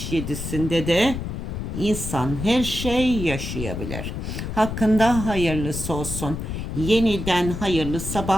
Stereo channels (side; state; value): left; noise; rumble, 5 dB below the sound